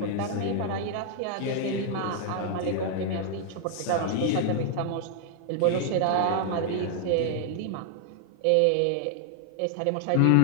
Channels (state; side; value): different; both; correlation 0.00